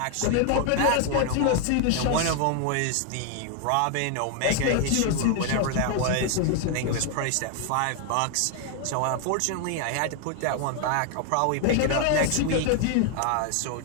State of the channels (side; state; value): both; different; correlation 0.00